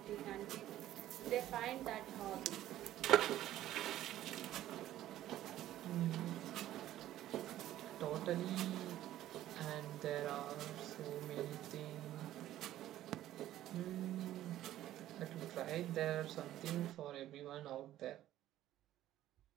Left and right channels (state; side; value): quieter; left; 13.4 dB